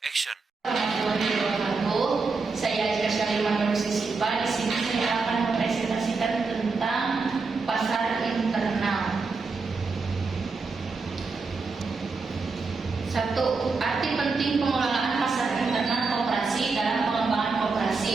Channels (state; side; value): quieter; left; 4.3 dB